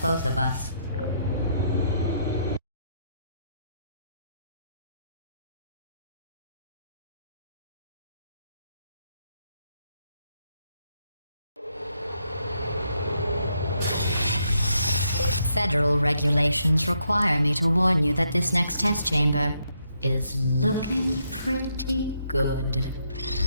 both of us. Federal regulations require me to warn you that this next test chamber is looking pretty good.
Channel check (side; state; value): both; inverted; correlation -0.77